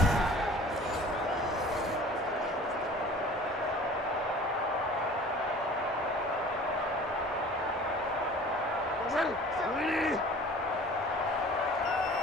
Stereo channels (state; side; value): normal; both; correlation 0.45